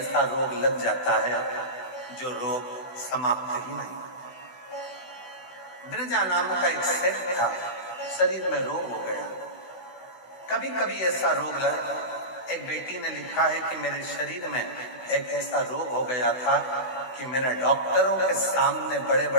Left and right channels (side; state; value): right; late; 16 ms